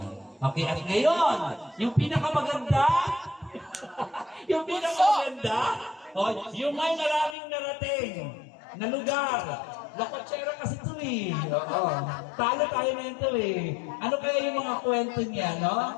Okay, at ngayon, yung pinakamaganda, yung pinakamaganda, yung may maraming narating na lugar. Lakotsera kasi ito eh. Oo. Talo tayo na ito eh. Ano kaya yung mga kwento niya, no?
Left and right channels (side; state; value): right; drops out; at 7.4 s